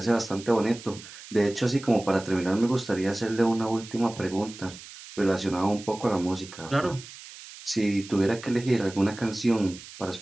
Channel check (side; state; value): right; noise; hiss, 16 dB below the sound